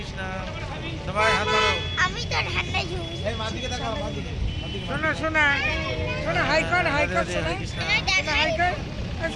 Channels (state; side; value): identical; both; correlation 1.00